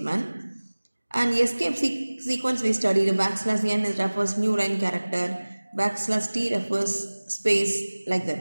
And escape sequence we studied. \n refers new line character. \t refers space, like that.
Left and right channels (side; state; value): both; inverted; correlation -1.00